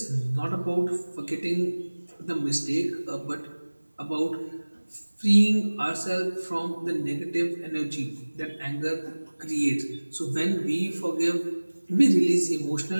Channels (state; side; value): inverted; both; correlation -1.00